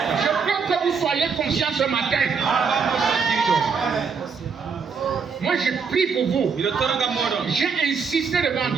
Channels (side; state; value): left; quieter; 5.6 dB